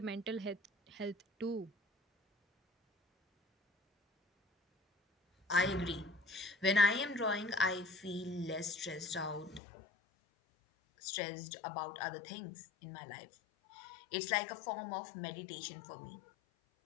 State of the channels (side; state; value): right; drops out; at 9.6 s